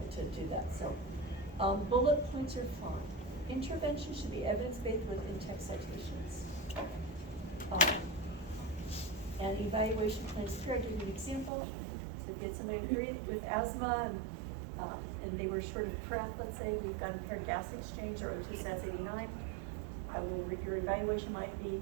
To do that, so. Bullet points are fine. Intervention should be evidence-based with in-text citations. And evaluation plans here, I'll give you an example. So get somebody with asthma and they were short of breath, let's say, we've got a paired gas exchange or O2 sats 89. Your evaluation might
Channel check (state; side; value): drops out; left; at 11.5 s